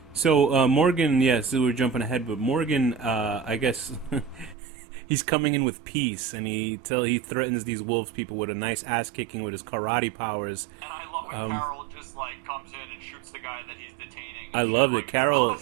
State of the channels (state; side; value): drops out; left; at 4.5 s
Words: So Morgan, yes, we're jumping ahead, but Morgan, I guess he's coming in with peace, and he threatens these wolves people with a nice ass kicking with his karate powers. And I love when Carol just like comes in and shoots the guy that he's detaining. I love it. Like,